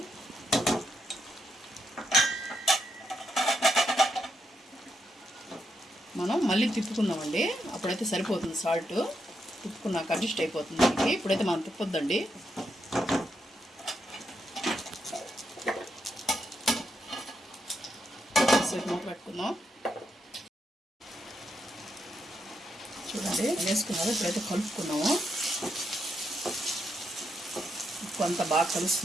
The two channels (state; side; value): normal; both; correlation 0.81